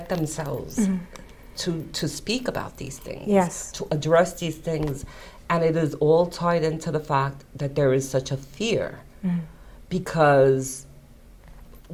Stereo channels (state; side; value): identical; both; correlation 1.00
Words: themselves to speak about these things, to address these things, and it is all tied into the fact that there is such a fear because